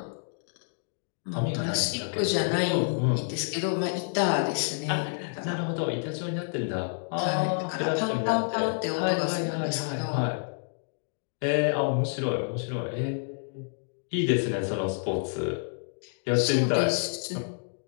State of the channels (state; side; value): silent; right; digital silence